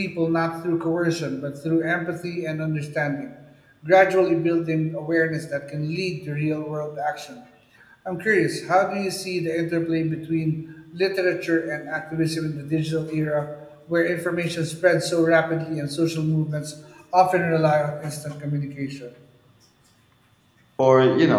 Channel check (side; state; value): both; identical; correlation 1.00